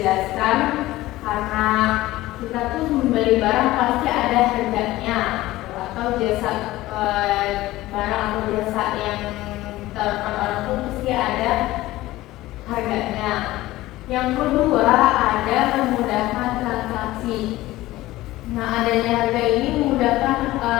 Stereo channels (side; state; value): right; quieter; 17.1 dB